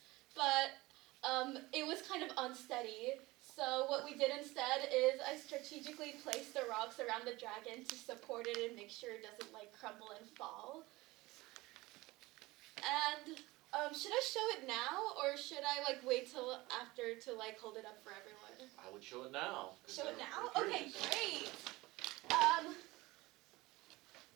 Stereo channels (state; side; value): quieter; left; 20.6 dB